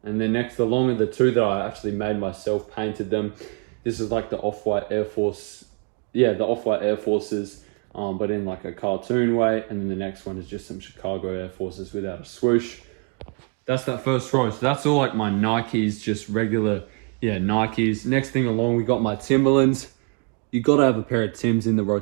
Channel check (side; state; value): left; quieter; 35.4 dB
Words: And then next along are the two that I actually made myself, painted them. This is like the Off-White Air Force. Yeah, the Off-White Air Forces, but in like a cartoon way. And then the next one is just some Chicago Air Forces without a swoosh. That's that first row. So that's all like my Nikes, just regular, yeah, Nikes. Next thing along, we got my Timberlands. You gotta have a pair of Tims in the